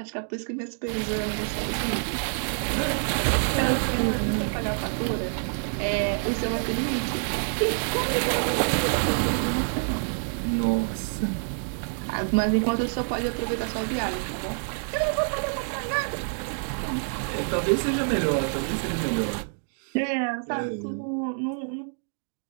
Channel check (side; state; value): left; silent; digital silence